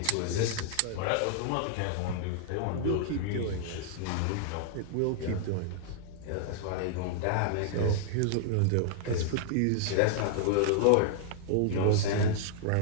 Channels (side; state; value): both; different; correlation -0.01